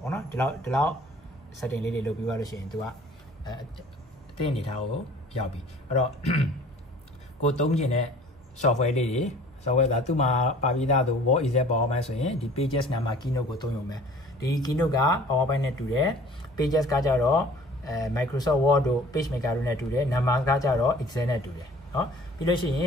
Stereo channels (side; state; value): both; normal; correlation 0.49